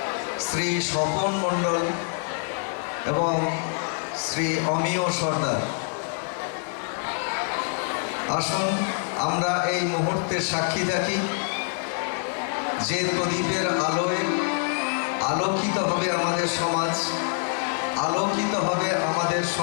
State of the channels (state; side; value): silent; right; 58 dB below the other